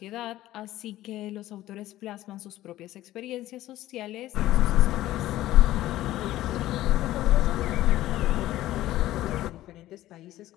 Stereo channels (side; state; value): right; quieter; 15.0 dB